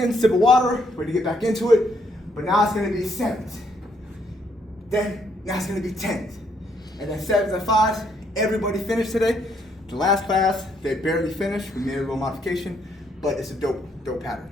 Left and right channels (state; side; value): normal; both; correlation 0.71